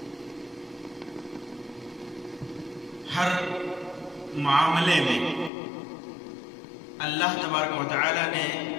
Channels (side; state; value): right; drops out; at 5.5 s